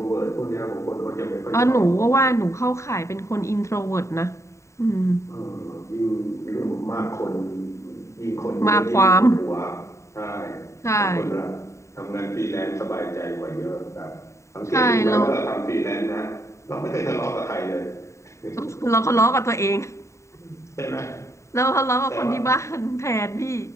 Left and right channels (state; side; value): late; right; 0.14 ms